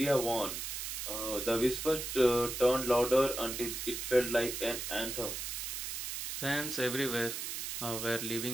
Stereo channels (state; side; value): noise; right; hiss, 4 dB below the sound